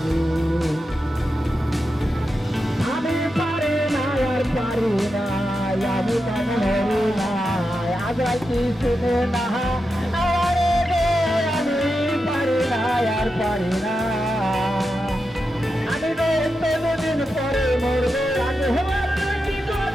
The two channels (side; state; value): both; normal; correlation 0.88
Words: রে। আমি পারি না আর পারি না, আমি কেন হরি না আজ কি শুনে না, আমি পারি না আর পারি না, আমি দিন পরে মরবো, আগে হবার কি